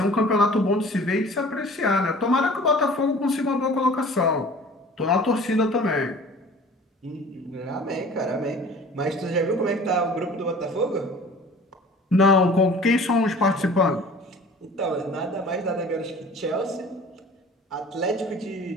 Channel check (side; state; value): both; normal; correlation 0.45